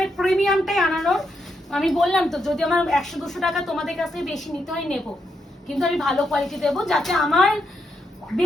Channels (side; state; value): both; normal; correlation 0.81